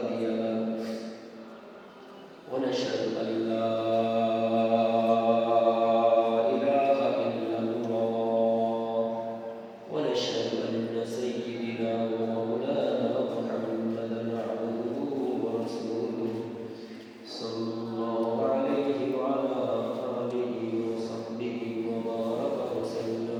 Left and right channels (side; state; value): both; identical; correlation 1.00